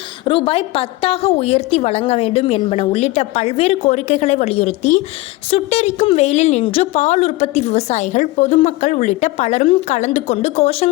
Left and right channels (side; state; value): right; quieter; 19.5 dB